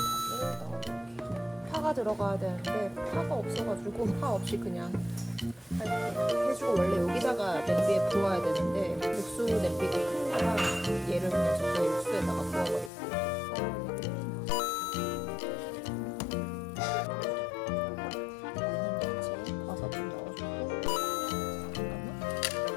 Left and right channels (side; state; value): right; drops out; at 12.9 s